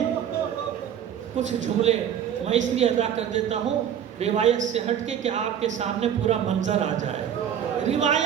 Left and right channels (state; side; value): quieter; left; 9.1 dB